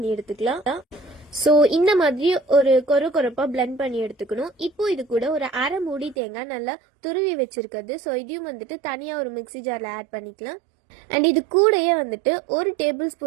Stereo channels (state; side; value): drops out; left; at 6.2 s